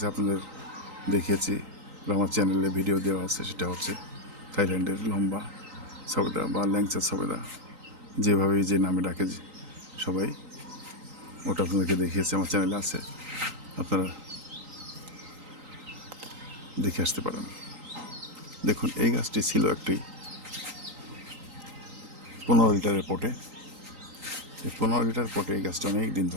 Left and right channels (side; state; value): left; late; 3.9 ms